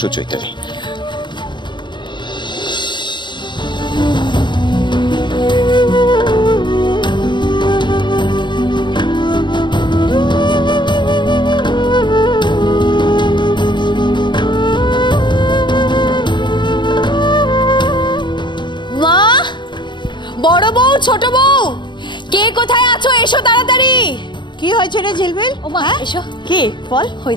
চৈতালি। মা, বড় বউ, ছোট বউ, কে কোথায় আছো? এসো তাড়াতাড়ি। কি হয়েছে রে ঝিলমিল? ও মা, এসো। কি বল? ওই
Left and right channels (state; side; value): late; right; 0.22 ms